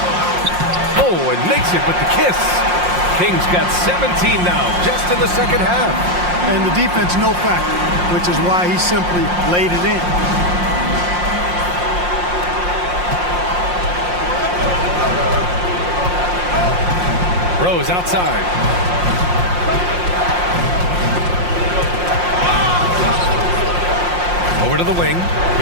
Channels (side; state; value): left; late; 5.6 ms